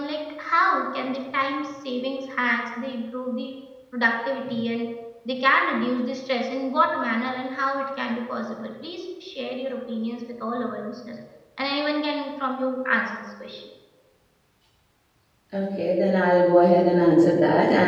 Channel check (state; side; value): identical; both; correlation 1.00